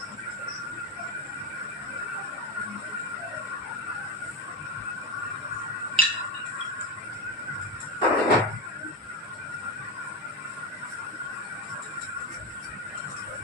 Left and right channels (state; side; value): normal; both; correlation 0.16